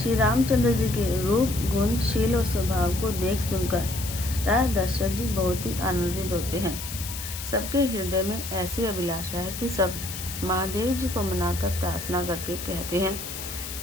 रामचंद्र जी के रूप, गुण, शील और स्वभाव को देख सुनकर राजा दशरथ जी बहुत ही आनंदित होते हैं। सबके हृदय में ऐसी अभिलाषा है कि सब महादेव जी को मनाकर प्रार्थना करके कहते हैं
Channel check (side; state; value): left; noise; hiss, 8 dB below the sound